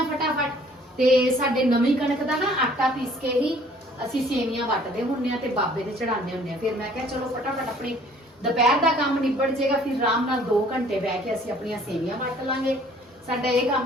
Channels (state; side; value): normal; both; correlation 0.56